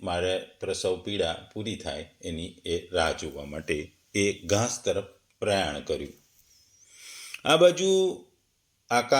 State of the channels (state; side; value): identical; both; correlation 1.00